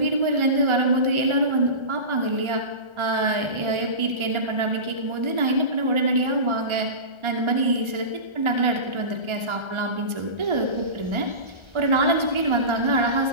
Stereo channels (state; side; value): late; left; 1.3 ms